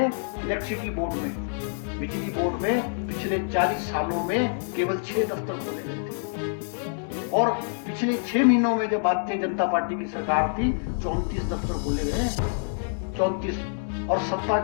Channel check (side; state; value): right; silent; 60 dB below the other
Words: इलेक्ट्रिसिटी बोर्ड में, बिजली बोर्ड में पिछले 40 सालों में केवल 6 दफ्तर खोले गए थे और पिछले 6 महीनों में जब भारतीय जनता पार्टी की सरकार थी 34 दफ्तर खोले गए। 34। और सत्ता